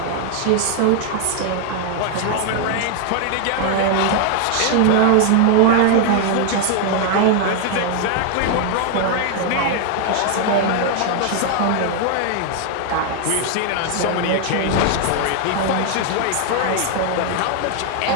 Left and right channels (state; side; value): different; both; correlation 0.00